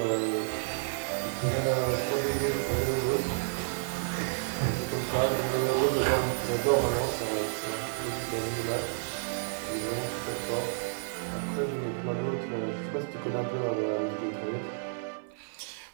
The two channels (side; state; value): left; silent; 57 dB below the other